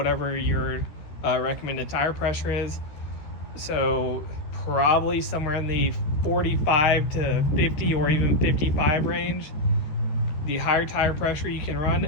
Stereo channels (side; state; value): right; late; 13 ms